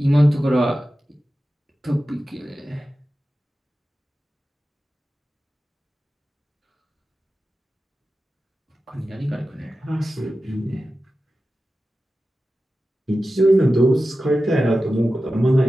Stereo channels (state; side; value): normal; both; correlation 0.94